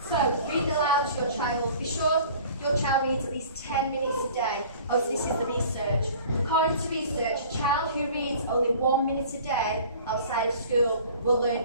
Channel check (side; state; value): both; inverted; correlation -0.46